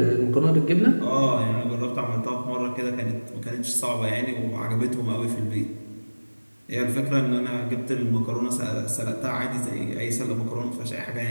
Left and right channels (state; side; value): inverted; both; correlation -1.00